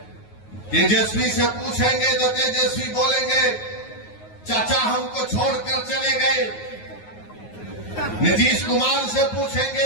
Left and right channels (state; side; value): late; right; 9.5 ms